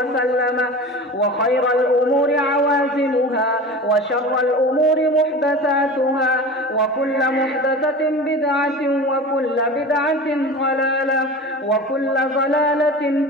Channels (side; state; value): both; normal; correlation 0.33